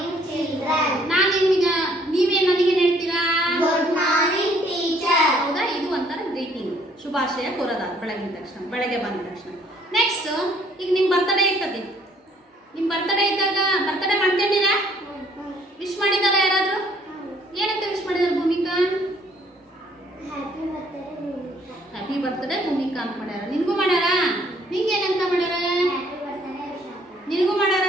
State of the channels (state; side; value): normal; both; correlation 0.62